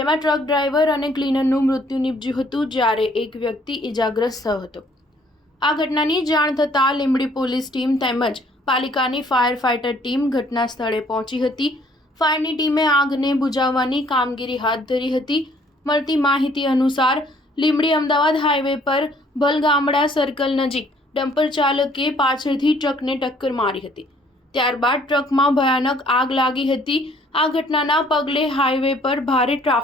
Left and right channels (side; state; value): both; normal; correlation 0.61